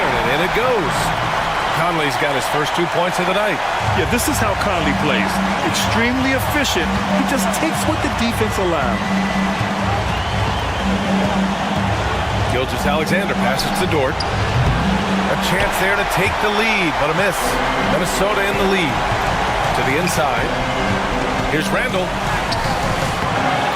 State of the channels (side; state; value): both; identical; correlation 1.00